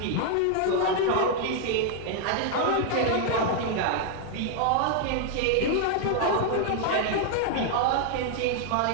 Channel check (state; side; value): different; both; correlation 0.00